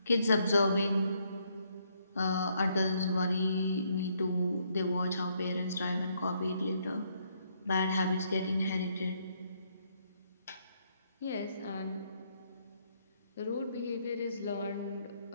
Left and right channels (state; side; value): inverted; both; correlation -0.72